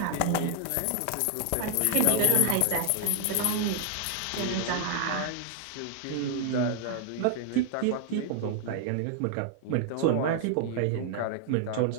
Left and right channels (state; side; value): different; both; correlation 0.00